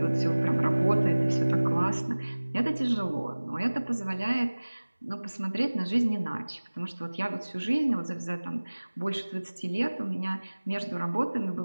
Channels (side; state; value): both; inverted; correlation -1.00